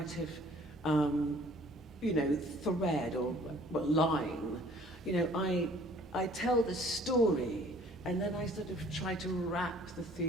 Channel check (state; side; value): normal; both; correlation 0.54